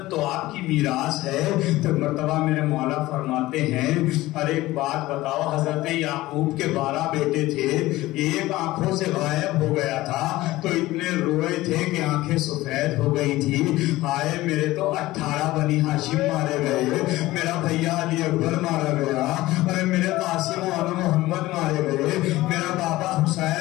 تو آپ کی میراث ہے. تو مرتبہ میرے مولا فرماتے ہیں ارے ایک بات بتاؤ, حضرت یعقوب کے 12 بیٹے تھے, ایک آنکھوں سے غائب ہو گیا تھا تو اتنے روئے تھے کہ آنکھیں سفید ہو گئی تھی. آئے میرے تو 18 بنی ہاشم مارے گئے, میرا بھیا علی اکبر مارا گیا, ارے میرے قاسم و محمد مارے گئے, میرا بابا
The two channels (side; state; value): right; quieter; 17.7 dB